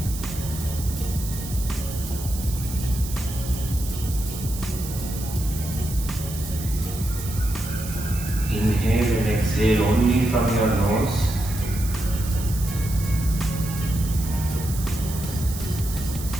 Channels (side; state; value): right; noise; hiss, 11 dB below the sound